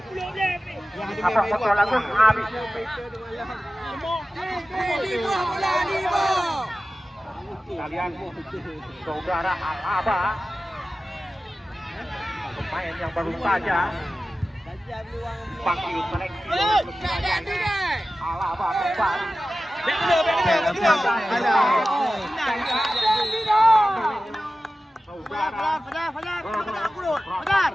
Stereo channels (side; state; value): both; normal; correlation 0.95